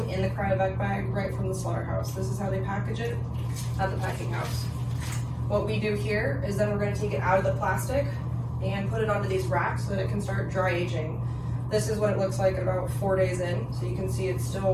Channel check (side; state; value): both; identical; correlation 1.00